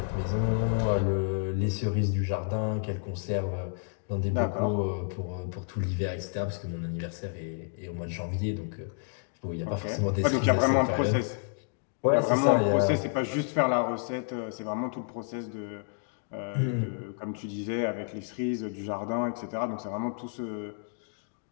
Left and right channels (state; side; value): silent; right; 58 dB below the other